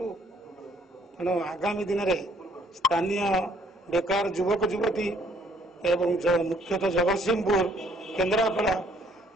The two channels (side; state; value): both; normal; correlation 0.64